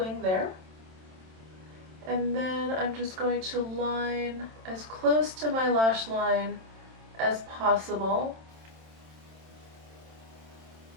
there. And then I'm just going to line as close to my lash line as possible.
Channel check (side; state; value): left; late; 27 ms